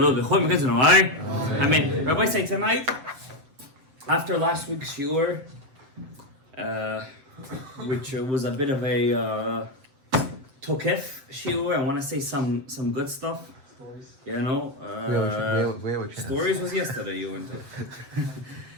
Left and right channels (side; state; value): left; late; 7.7 ms